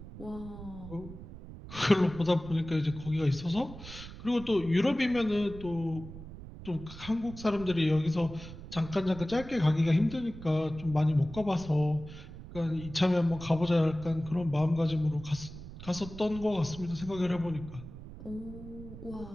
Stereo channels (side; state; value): right; noise; rumble, 14 dB below the sound